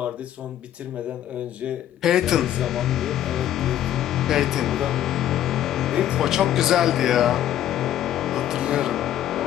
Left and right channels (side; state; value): right; quieter; 11.7 dB